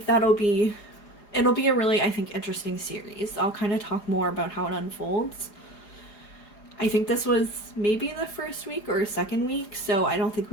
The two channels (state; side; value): late; right; 4.9 ms